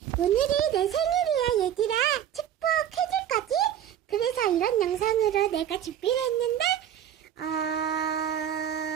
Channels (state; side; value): quieter; left; 10.2 dB